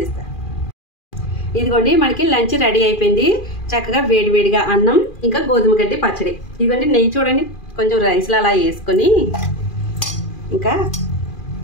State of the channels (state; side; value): late; right; 2.4 ms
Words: ఇదిగోండి, మనకి లంచ్ రెడీ అయిపోయింది. చక్కగా వేడివేడిగా అన్నం ఇంకా గోధుమ గడ్డి పచ్చడి. ఇదిగోండి నెయ్యి చూడండి, కొంచెం రైస్లో అలా వేసుకొని ఇంకా